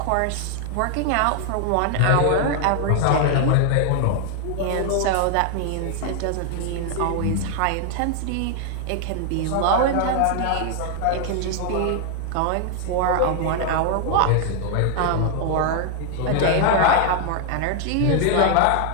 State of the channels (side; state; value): both; different; correlation 0.00